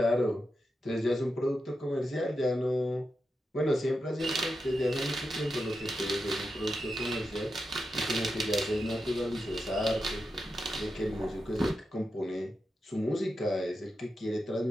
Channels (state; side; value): normal; both; correlation 0.88